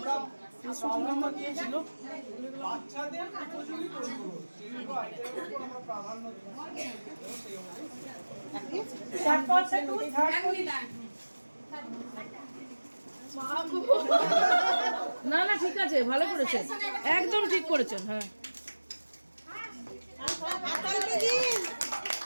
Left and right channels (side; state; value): both; inverted; correlation -1.00